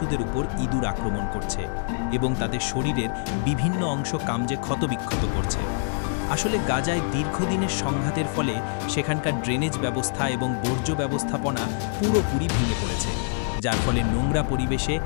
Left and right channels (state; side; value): silent; right; 57 dB below the other